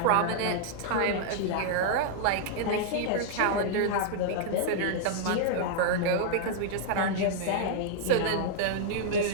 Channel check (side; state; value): both; different; correlation -0.01